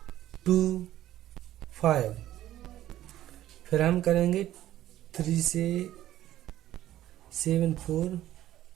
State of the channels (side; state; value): left; quieter; 13.4 dB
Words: 2 5। फिर हम करेंगे 3 से 7 4।